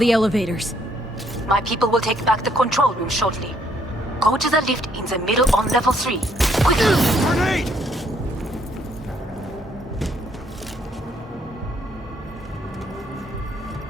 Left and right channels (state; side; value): normal; both; correlation 0.69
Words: elevators. My people will take back the control room shortly. Go to the lift in the middle on level 3. Quickly! Grenade!